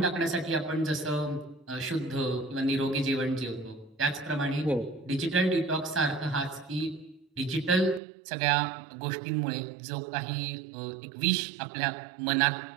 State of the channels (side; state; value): left; drops out; at 8.0 s